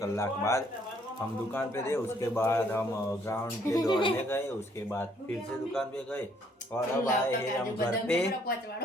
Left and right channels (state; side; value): normal; both; correlation 0.66